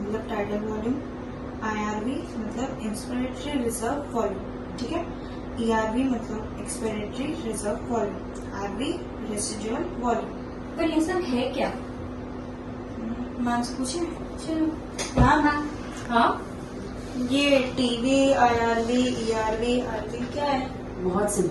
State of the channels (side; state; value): both; identical; correlation 1.00